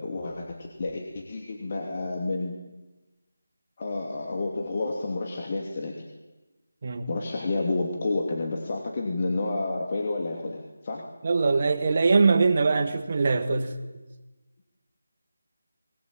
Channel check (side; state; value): both; inverted; correlation -0.90